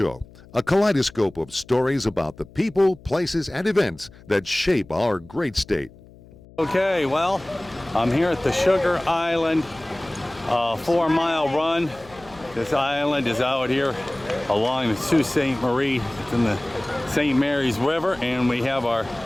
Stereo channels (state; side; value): noise; left; hum, 23 dB below the sound